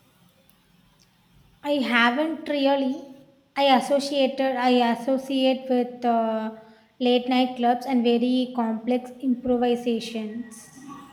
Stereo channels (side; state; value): both; identical; correlation 1.00